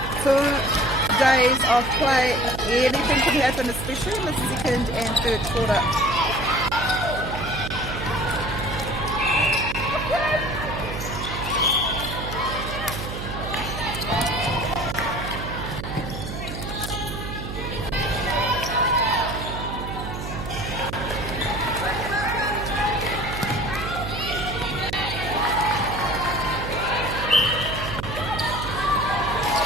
2 days of play, anything can happen, especially in the second and third quarter.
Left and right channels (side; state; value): right; noise; hum, 7 dB below the sound